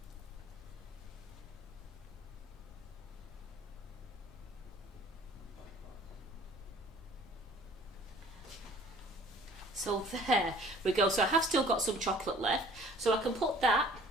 So there we go. So I have still got some chocolate left. So I can put that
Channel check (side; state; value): both; normal; correlation 0.52